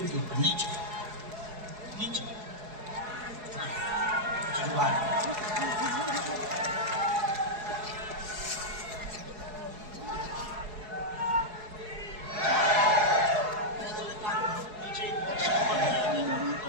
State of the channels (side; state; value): left; late; 4.7 ms